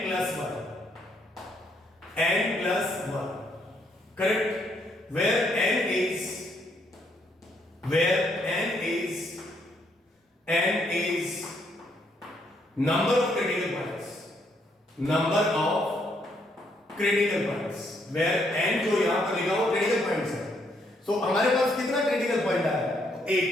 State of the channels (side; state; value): both; normal; correlation 0.72